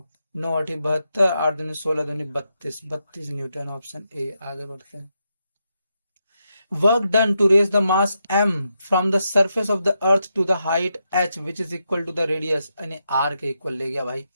नौ अठी 72, आठ दूनी 16, दूनी 32, 32 न्यूटन, ऑप्शन ए। आगे बढ़ते हैं। Work done to raise the mass m from the surface of the earth to the height h which is equal to the radius, यानी r के equal ले गया भाई,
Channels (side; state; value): both; inverted; correlation -0.84